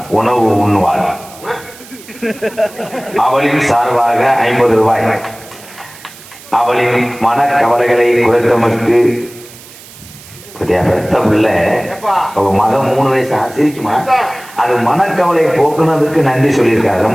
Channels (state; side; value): noise; right; hiss, 20 dB below the sound